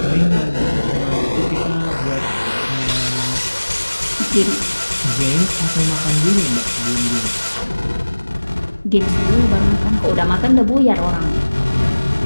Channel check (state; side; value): inverted; both; correlation -1.00